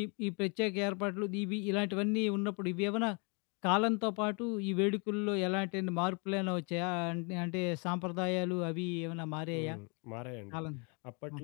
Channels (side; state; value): right; quieter; 34.0 dB